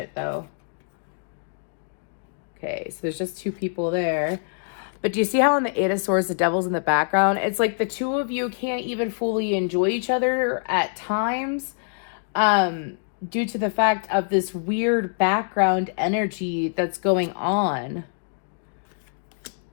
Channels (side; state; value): right; silent; digital silence